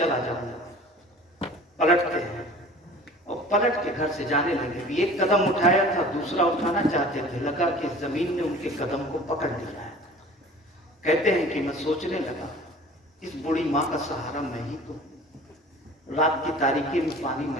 جاؤں گا۔ پلٹتے ہیں اور پلٹ کے گھر سے جانے لگے، بھی ایک قدم اٹھایا تھا، دوسرا اٹھانا چاہتے تھے، لگا کہ زمین نے ان کے قدم کو پکڑ لیا ہے۔ کہتے ہیں کہ میں سوچنے لگا اس بوڑھی ماں کا سہارا میں ہی تو، رات کی تاریکی میں پانی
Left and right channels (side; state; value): both; normal; correlation 0.44